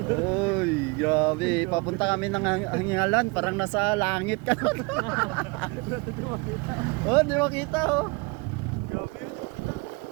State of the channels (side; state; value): left; quieter; 27.8 dB